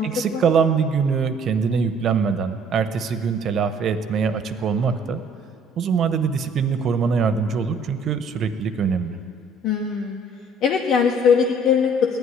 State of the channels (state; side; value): normal; both; correlation 0.57